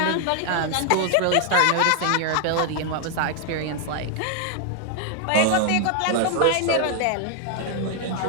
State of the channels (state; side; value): different; both; correlation 0.00